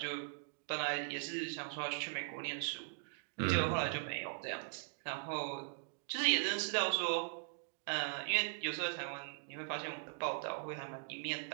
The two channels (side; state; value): left; silent; digital silence